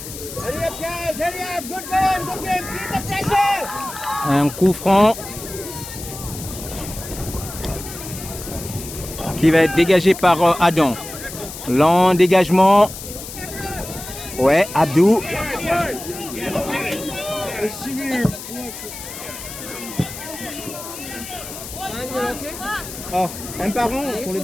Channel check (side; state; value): left; noise; hiss, 11 dB below the sound